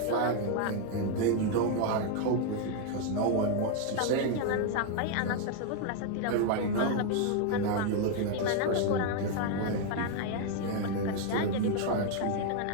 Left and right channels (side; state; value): both; different; correlation 0.00